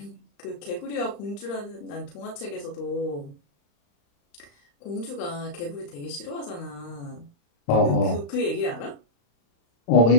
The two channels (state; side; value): late; right; 35 ms